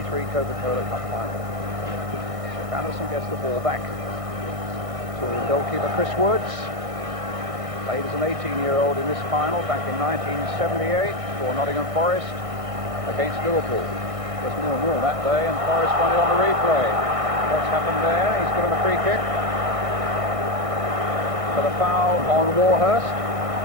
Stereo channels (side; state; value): left; late; 1.6 ms